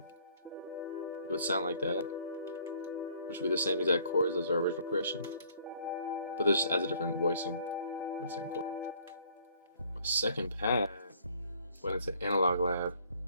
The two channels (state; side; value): inverted; both; correlation -0.59